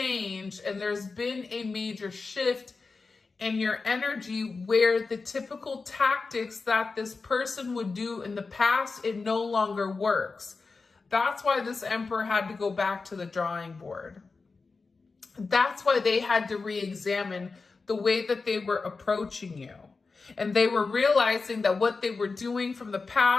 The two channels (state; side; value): quieter; right; 4.2 dB